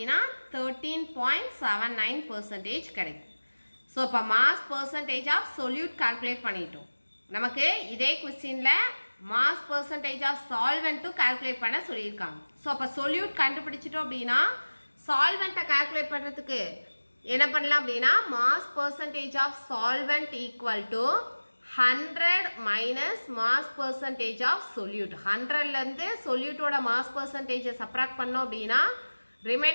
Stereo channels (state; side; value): inverted; both; correlation -1.00